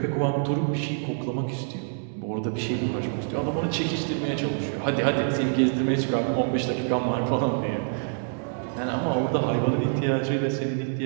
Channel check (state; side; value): silent; left; digital silence